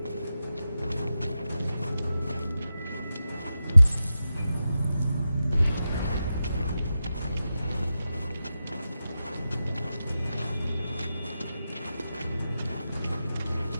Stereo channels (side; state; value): both; inverted; correlation -0.91